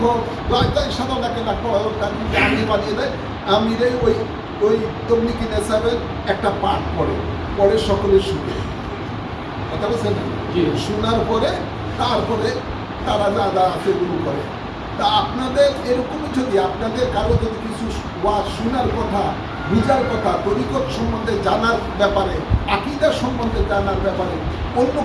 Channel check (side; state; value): both; identical; correlation 1.00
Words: হোক, সাধারণ একটা ডাক্তার হোক, তাকে আমি বানিয়ে দেয়, আমিরে ওই তবলিগি নেশাবের একটা পাঠ পড়ে সকলের শুনে, কথা বলছেন, শোনার পরে তারপরে তারা যা আছে এগুলো করে। তা আপনাদের এরকমই যদি আপনাদের কারো যদি কিছু ওয়াজ শোনার কথা, বুঝার কথা, তরিকত সম্বন্ধে জানার ব্যাপারে, আকীদা সম্বন্ধে জানার ব্যাপারে অন্য